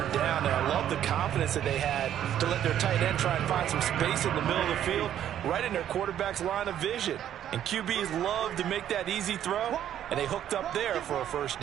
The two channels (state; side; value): quieter; left; 10.7 dB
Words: down. And I love the confidence that they had to let their tight end try and find some space in the middle of the field, right in their quarterback's line of vision. And QBs love to make that easy throw, and they hooked up there for a first